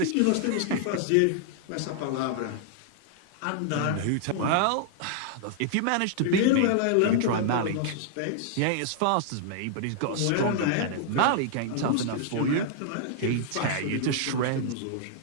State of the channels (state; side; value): different; both; correlation 0.00